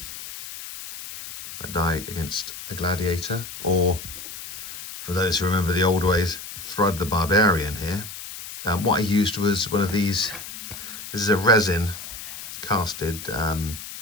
I die against a gladiator, or for those who remember the old ways, Thrud the Barbarian here. What I used was one of these. This is a resin casted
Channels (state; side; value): noise; left; hiss, 11 dB below the sound